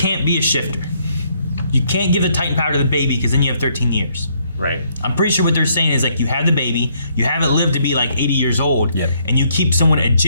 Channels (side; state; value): both; inverted; correlation -0.69